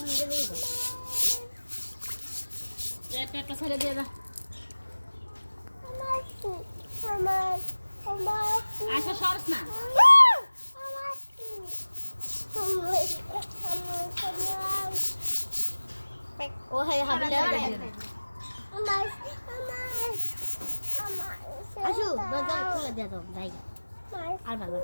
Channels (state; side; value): inverted; both; correlation -1.00